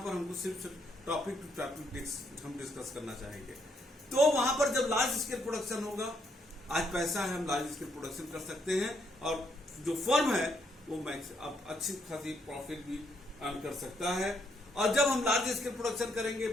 हमको सिर्फ टॉपिक टू टॉपिक हम डिस्कस करना चाहेंगे। तो वहां पर जब लार्ज स्केल प्रोडक्शन होगा, आज पैसा है, हम लार्ज स्केल प्रोडक्शन कर सकते हैं और जो फर्म है वो मैक्स अब अच्छी खासी प्रॉफिट भी अर्न कर सकता है। और जब हम लार्ज स्केल प्रोडक्शन करेंगे,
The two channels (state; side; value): normal; both; correlation 0.74